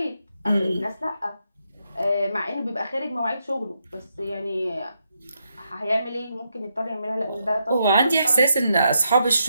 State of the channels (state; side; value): inverted; both; correlation -0.81